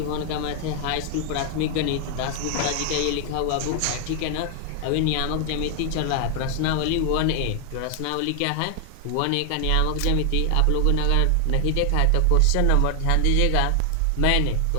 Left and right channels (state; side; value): different; both; correlation 0.00